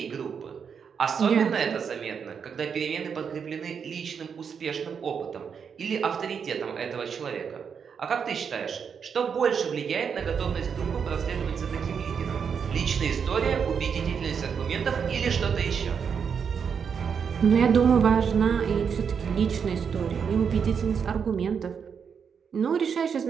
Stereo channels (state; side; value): quieter; left; 6.7 dB